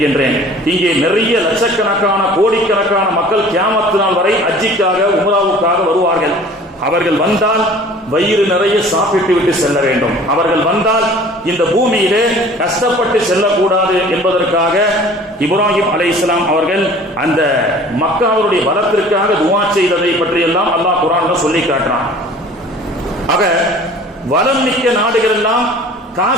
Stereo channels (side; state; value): both; normal; correlation 0.47